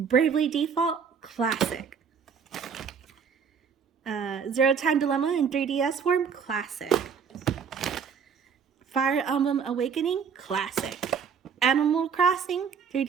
Default, Classic. Zero Time Dilemma in 3DS form, Classic. Fire Emblem Awakening, Classic. Animal Crossing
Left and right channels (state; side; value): quieter; left; 6.6 dB